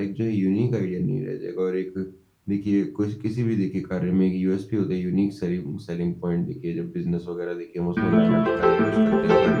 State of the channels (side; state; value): both; identical; correlation 1.00